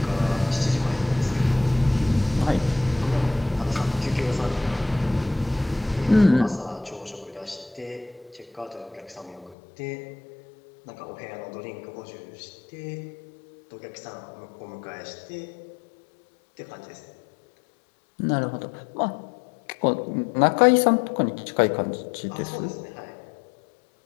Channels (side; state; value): right; drops out; at 9.6 s